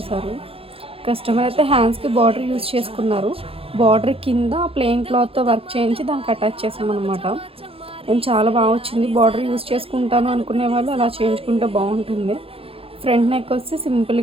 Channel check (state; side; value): late; left; 0.27 ms